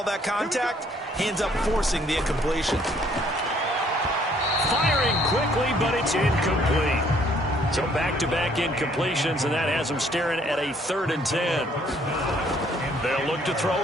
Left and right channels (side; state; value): both; normal; correlation 0.63